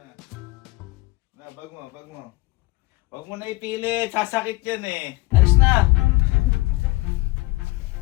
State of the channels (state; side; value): quieter; right; 21.3 dB